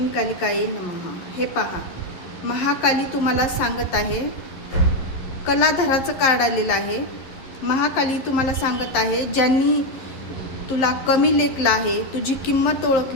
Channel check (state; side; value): late; right; 11 ms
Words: कालिकाये नमः. हे पहा, महाकाली तुम्हाला सांगत आहे, कलाधराचं कार्ड आलेलं आहे. महाकाली तुम्हाला सांगत आहे, ज्यांनी तुला कमी लेखलं आहे, तुझी किंमत